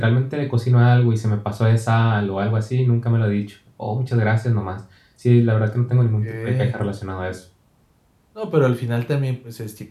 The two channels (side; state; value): both; identical; correlation 1.00